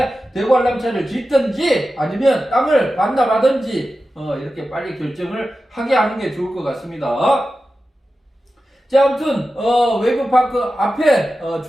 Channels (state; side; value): normal; both; correlation 0.93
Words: 대관람차를 짓든지 아니면 땅을 반납하든지 이렇게 빨리 결정을 하게 하는 게 좋을 것 같습니다. 자, 아무튼 웨이브파크 앞에